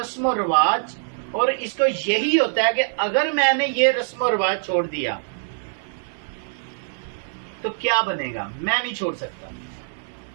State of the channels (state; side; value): silent; left; 63 dB below the other